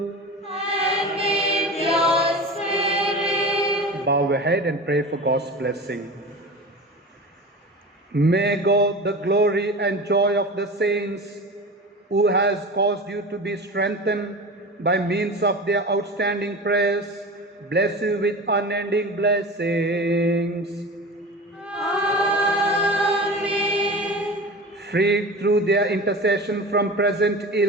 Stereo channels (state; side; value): normal; both; correlation 0.32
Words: And with your spirit. Bow your head and pray for God's blessing. May God, the glory and joy of the saints, who has caused you to be strengthened by means of their outstanding prayers, bless you with unending blessings. Amen. Freed through their intercession from present